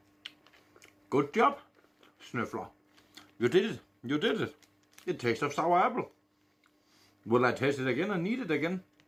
Good job, Snøfler. You did it. You did it. It tastes of sour apple. Will I taste it again and eat it again?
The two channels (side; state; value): both; identical; correlation 1.00